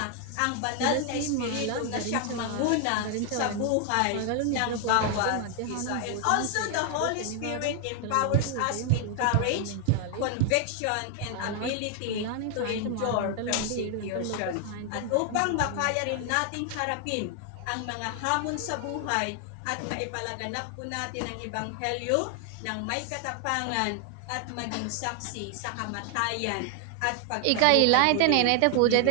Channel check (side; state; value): both; different; correlation 0.00